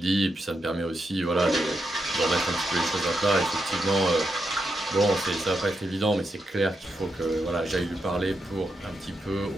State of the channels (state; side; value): normal; both; correlation 0.84